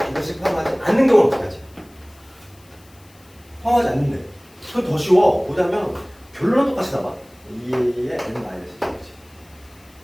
포함하지 않는 경우는 어떻게 하지? 포함하지 않는데 그건 더 쉬워. 뭐냐면 결론은 똑같이 나와. 2의 n-1이지.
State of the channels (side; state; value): left; noise; hiss, 28 dB below the sound